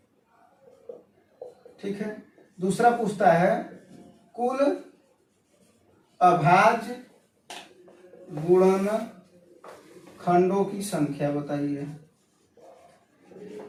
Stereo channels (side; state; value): both; identical; correlation 1.00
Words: ठीक है। दूसरा पूछता है कुल अभाज्य गुणनखंडों की संख्या बताइए।